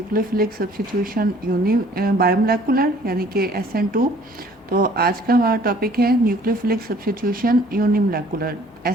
सब्स्टिट्यूशन यूनी बायोमोलेकुलर यानी कि SN2। तो आज का हमारा टॉपिक है न्यूक्लियोफिलिक सब्स्टिट्यूशन यूनिमोलेकुलर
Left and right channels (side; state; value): both; normal; correlation 0.56